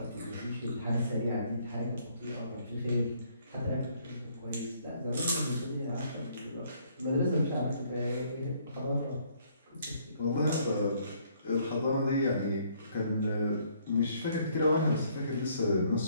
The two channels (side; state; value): both; inverted; correlation -0.65